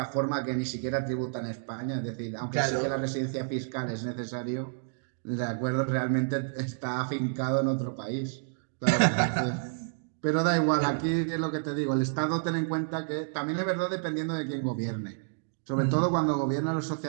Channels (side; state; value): left; silent; digital silence